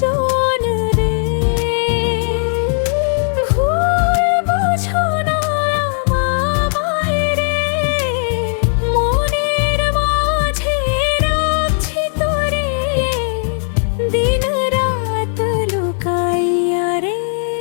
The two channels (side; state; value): right; silent; 68 dB below the other